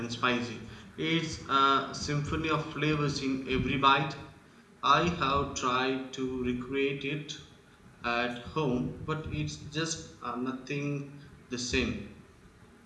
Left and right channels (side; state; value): both; identical; correlation 1.00